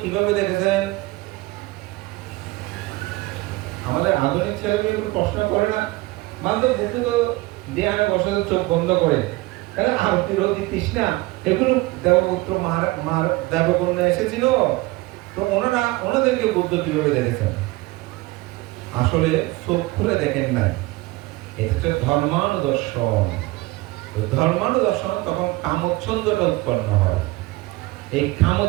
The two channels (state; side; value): quieter; left; 20.9 dB